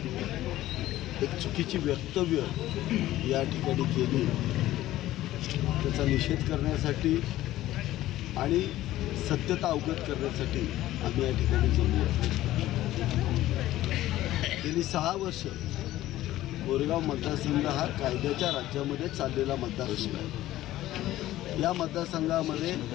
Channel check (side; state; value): right; quieter; 15.0 dB